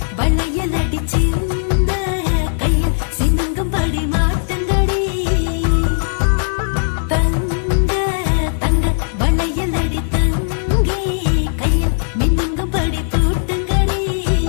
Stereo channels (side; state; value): right; silent; digital silence